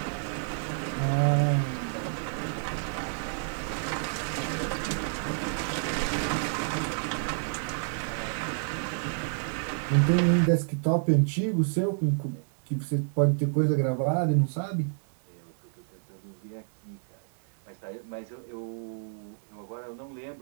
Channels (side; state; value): left; silent; digital silence